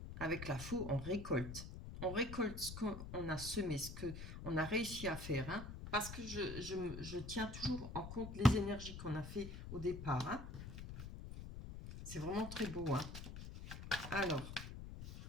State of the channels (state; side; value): noise; left; rumble, 9 dB below the sound